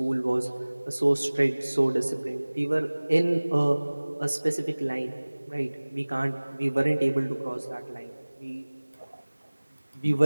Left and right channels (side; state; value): both; inverted; correlation -1.00